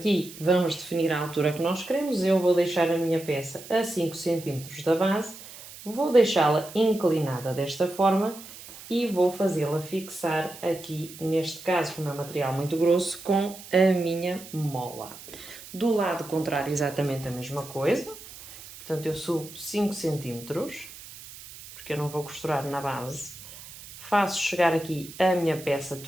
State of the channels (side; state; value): right; noise; hiss, 16 dB below the sound